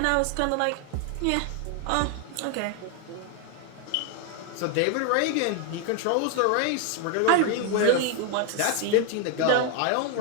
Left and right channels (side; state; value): both; different; correlation 0.01